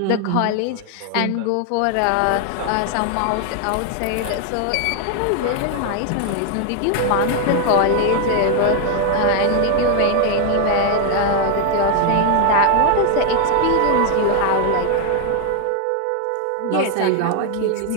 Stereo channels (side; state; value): both; different; correlation 0.00